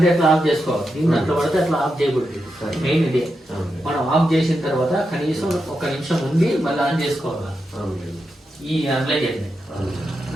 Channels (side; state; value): both; normal; correlation 0.87